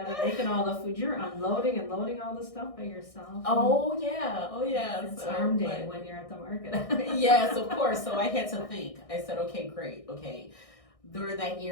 making all the food, you're unloading and loading all the stuff by yourself. Oh yeah. It's arm day when you're at the market. Yes, of course. So I had to think. I said, okay, great. Okay. During that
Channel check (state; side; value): late; right; 1.6 ms